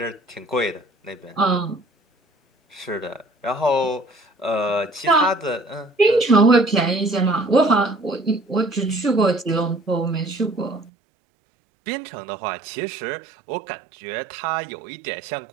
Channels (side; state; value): left; drops out; at 10.9 s